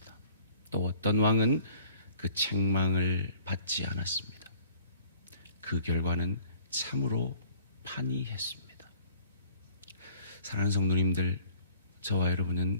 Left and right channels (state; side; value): inverted; both; correlation -0.54